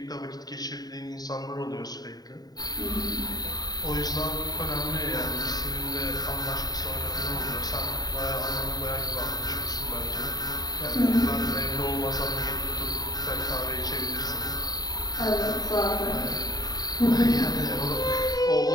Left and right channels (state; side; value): late; right; 0.19 ms